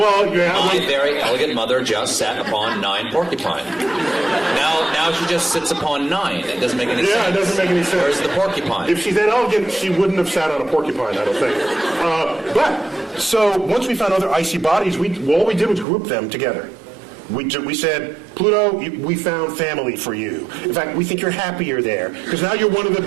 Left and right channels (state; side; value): drops out; left; at 15.9 s